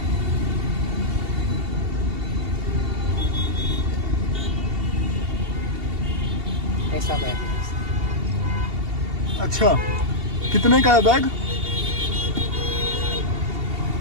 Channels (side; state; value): left; late; 2.7 ms